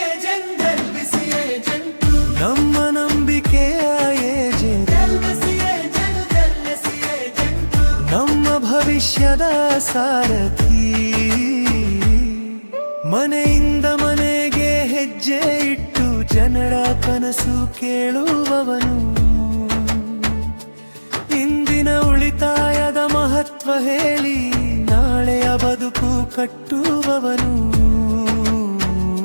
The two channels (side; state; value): both; inverted; correlation -1.00